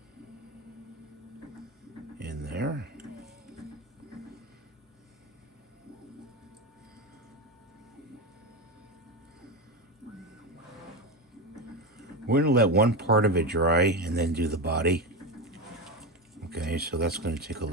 in there. We're gonna let one part of it dry and then do the body. Okay, so that's gonna take a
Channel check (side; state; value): both; normal; correlation 0.17